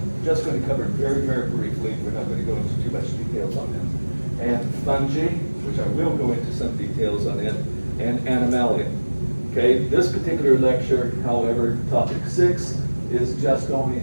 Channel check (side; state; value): both; inverted; correlation -1.00